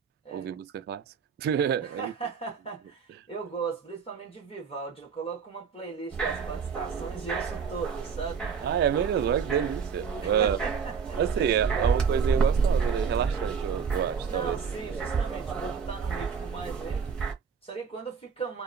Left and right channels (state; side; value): quieter; left; 6.4 dB